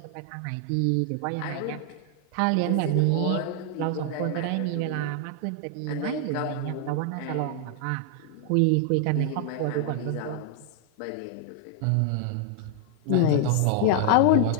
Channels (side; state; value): both; different; correlation 0.00